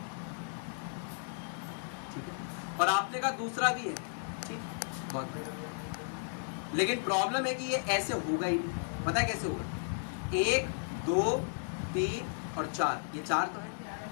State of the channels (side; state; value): right; silent; digital silence